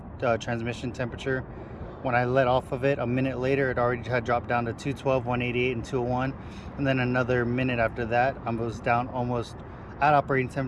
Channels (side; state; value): both; identical; correlation 1.00